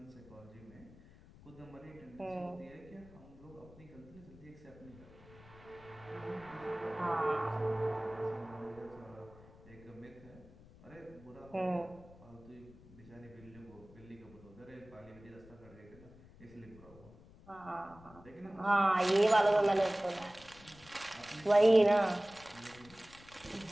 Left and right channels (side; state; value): left; noise; rumble, 21 dB below the sound